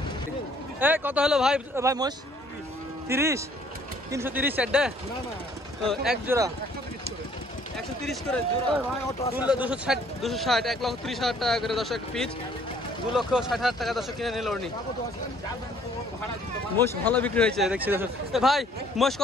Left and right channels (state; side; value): normal; both; correlation 0.60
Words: কত হলো ভাই? ভাই মহিষ 30, 330 সেটে এক জোড়া 130 করে জোড়া, 260, 1,30,000 টাকা করে দর্শক পিস, 2,60,000 টাকা দর্শক কিনে নিল উনি। মোষ ভালো বিক্রি হয়েছে দেখছি দর্শক। ভাই মোষ